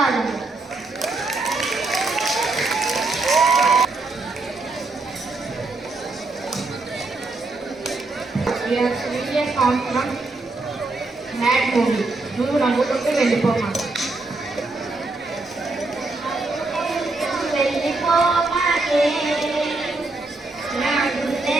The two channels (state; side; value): quieter; left; 3.3 dB